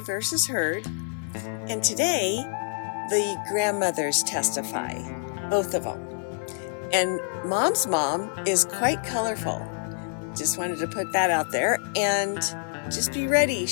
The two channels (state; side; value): silent; right; digital silence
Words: versus Heard. And today, the grandmothers testify, both of them. And Mom's mom is quite colorful. Just wanted to put that out there. And just be ready.